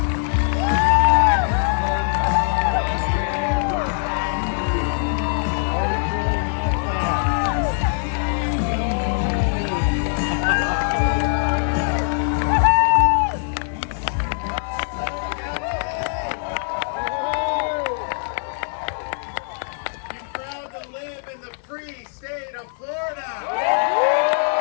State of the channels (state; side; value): silent; right; digital silence